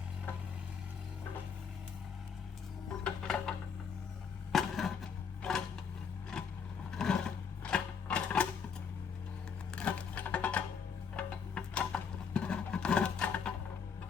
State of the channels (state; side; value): quieter; right; 6.5 dB